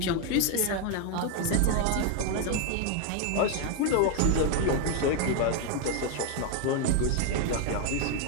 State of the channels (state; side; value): different; both; correlation 0.01